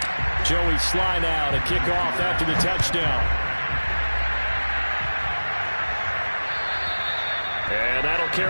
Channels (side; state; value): both; inverted; correlation -1.00